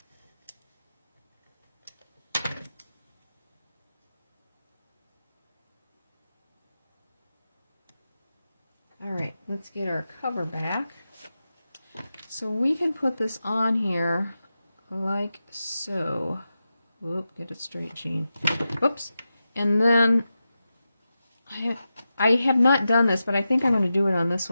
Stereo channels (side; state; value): both; inverted; correlation -0.91